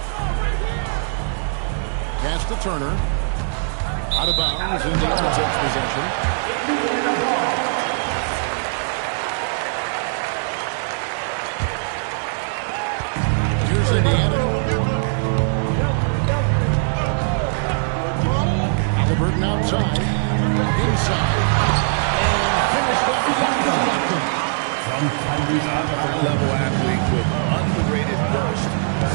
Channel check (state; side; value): silent; left; digital silence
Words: Pass to Turner. Out of bounds. Indiana takes possession. Here's Indiana. Halliburton outside. Inside. And finished off by Siakam. High-level athlete with underrated burst.